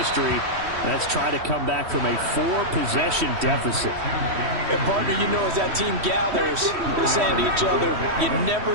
That's try to come back from a 4-possession deficit. And partner, you know, as that team gathers, we're saying to each other, you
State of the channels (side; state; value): left; late; 3.1 ms